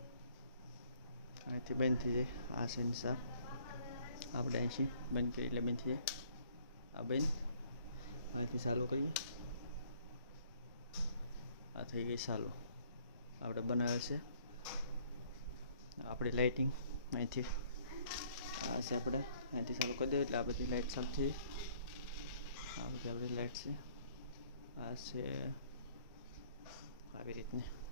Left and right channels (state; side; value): inverted; both; correlation -0.61